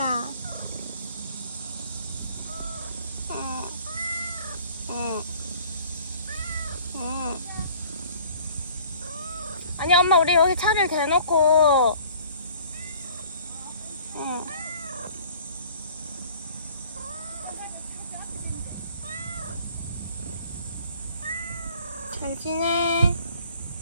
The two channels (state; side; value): inverted; both; correlation -0.52